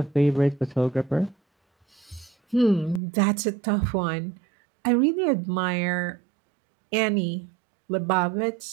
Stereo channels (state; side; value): drops out; left; at 3.0 s